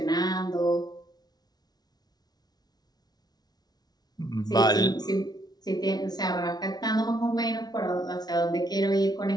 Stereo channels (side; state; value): right; late; 0.19 ms